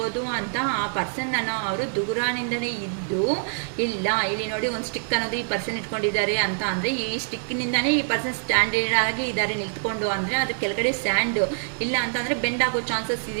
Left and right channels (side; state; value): left; silent; digital silence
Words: ಅಂತ ಆ ಪರ್ಸನ್ ಅವರು ದುಗುರಾನಿಂದನೇ ಇದ್ದು ಇಲ್ಲ. ಇಲ್ಲಿ ನೋಡಿ ಒಂದು ಸ್ಟಿಕ್ ಅನ್ನೋದು ಈ ಪರ್ಸನ್ ಇಟ್ಕೊಂಡಿದ್ದಾರೆ. ಅಂತ ಅಂದರೆ ಈ ಸ್ಟಿಕ್ನಿಂದನೇ ಈ ಪರ್ಸನ್ ಸ್ಟ್ಯಾಂಡರ್ಡ್ ಆಗಿ ಇದ್ದಾರೆ ನಿಂತ್ಕೊಂಡು. ಅಂದರೆ ಅದ್ರ ಕೆಳಗಡೆ ಸ್ಯಾಂಡ್ ಇಲ್ಲ ಅಂತಂದರೆ ಬೆಂಡ್ ಆಗೋ ಚಾನ್ಸಸ್